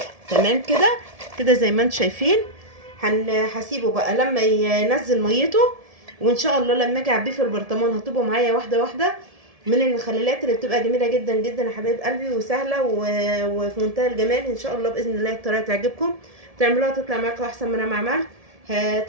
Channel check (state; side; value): late; left; 1.7 ms